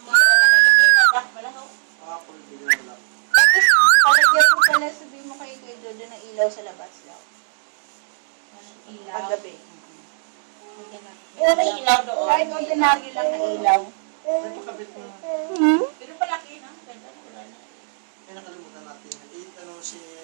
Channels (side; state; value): left; silent; digital silence